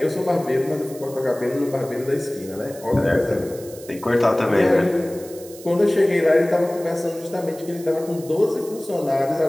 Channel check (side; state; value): right; noise; hiss, 18 dB below the sound